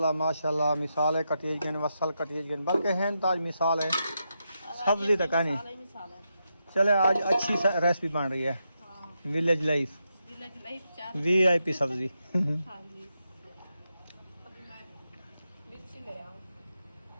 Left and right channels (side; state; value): both; inverted; correlation -0.85